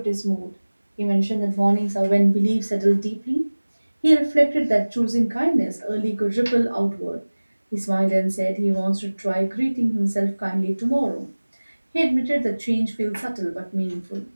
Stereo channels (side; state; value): both; inverted; correlation -1.00